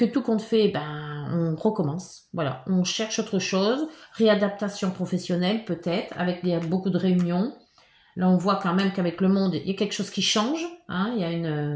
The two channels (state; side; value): identical; both; correlation 1.00